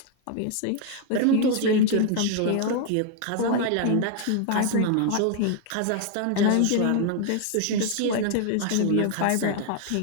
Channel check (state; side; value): different; both; correlation 0.00